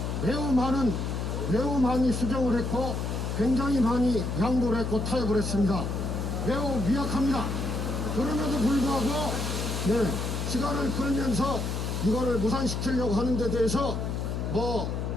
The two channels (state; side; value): noise; left; hum, 2 dB below the sound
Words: 매우 많이 수정을 했고 굉장히 많이 양보를 했고 타협을 했습니다. 매우 미약합니다. 그럼에도 불구하고 시간을 끌면서 이거를 무산시키려고 하는 데 대해서